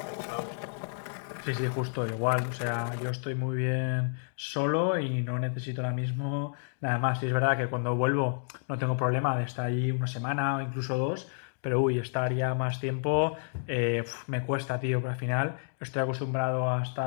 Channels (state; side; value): silent; right; digital silence